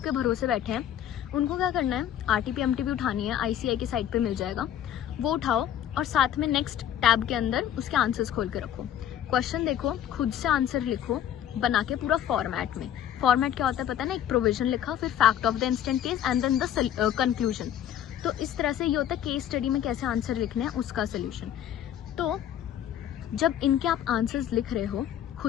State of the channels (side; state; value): right; quieter; 10.6 dB